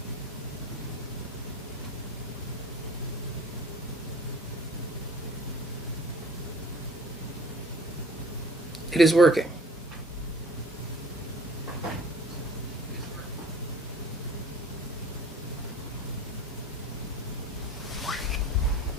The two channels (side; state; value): both; normal; correlation 0.47